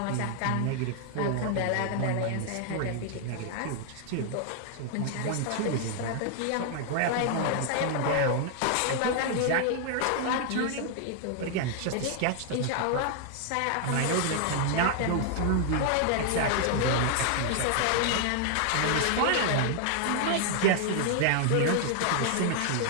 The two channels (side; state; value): both; different; correlation 0.00